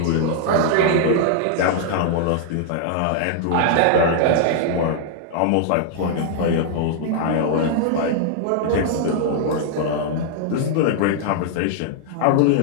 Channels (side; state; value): both; different; correlation -0.01